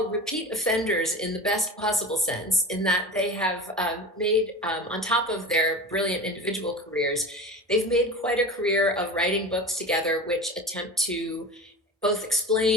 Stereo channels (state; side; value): normal; both; correlation 0.32